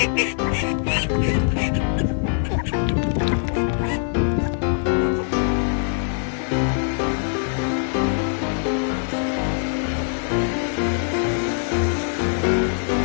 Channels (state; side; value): silent; right; 62 dB below the other